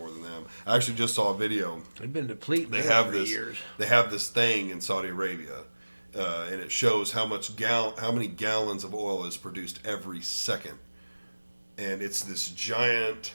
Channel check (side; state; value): both; inverted; correlation -1.00